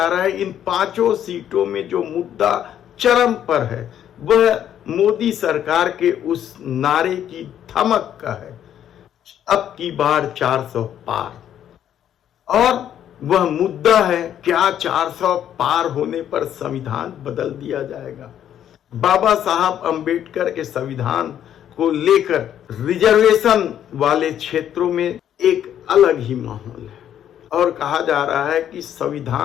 रहा है इन 5 सीटों में जो मुद्दा चरम पर है वह मोदी सरकार के उस नारे की धमक का है, अब की बार 400 पार। और वह मुद्दा है, क्या 400 पार होने पर संविधान बदल दिया जाएगा? बाबा साहब अंबेडकर के संविधान को लेकर रिजर्वेशन वाले क्षेत्रों में एक अलग ही माहौल है और कहा जा रहा है कि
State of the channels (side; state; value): right; quieter; 10.3 dB